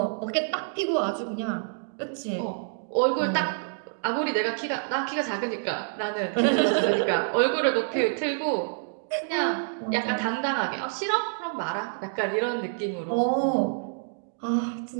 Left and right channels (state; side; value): silent; left; digital silence